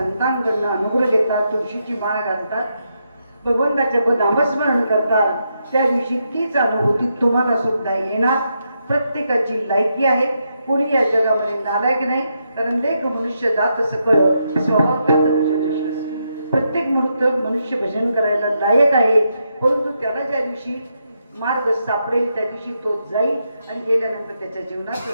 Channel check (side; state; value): both; inverted; correlation -0.82